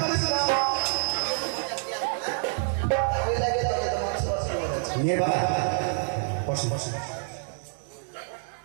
করিস না। ওই লাগে তবে তো মাংস ভাত খেলাম। মেয়ের বাবা বসেন বসেন।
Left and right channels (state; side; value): silent; left; digital silence